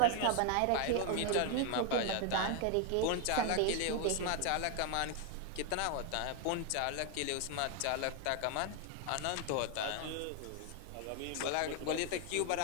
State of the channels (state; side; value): different; both; correlation 0.01